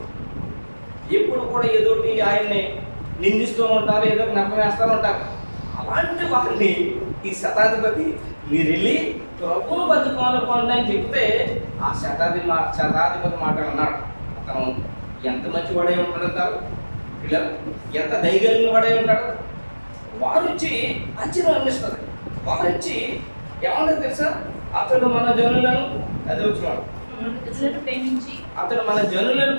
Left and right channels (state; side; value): inverted; both; correlation -1.00